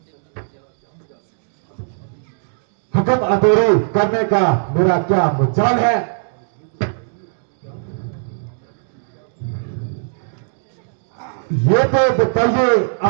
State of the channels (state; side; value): silent; left; digital silence